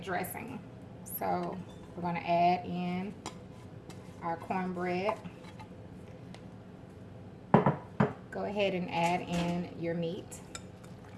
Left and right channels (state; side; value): identical; both; correlation 1.00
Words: So we're going to add in our cornbread. Go ahead and add in your meat.